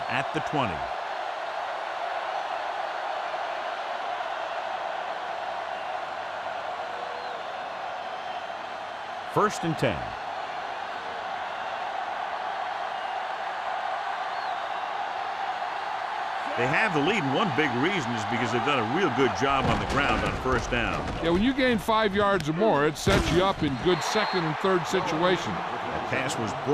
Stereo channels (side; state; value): both; identical; correlation 1.00